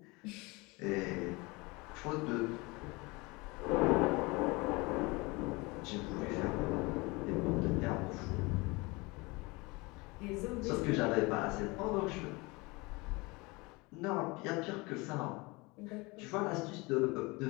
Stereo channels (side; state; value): right; quieter; 25.2 dB